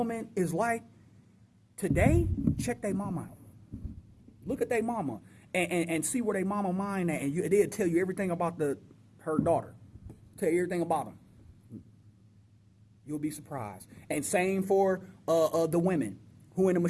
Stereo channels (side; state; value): both; identical; correlation 1.00